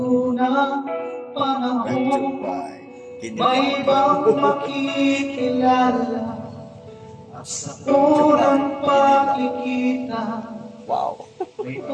ng panahon, may ibang makikilala at sa unang pagkikita, may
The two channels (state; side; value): identical; both; correlation 1.00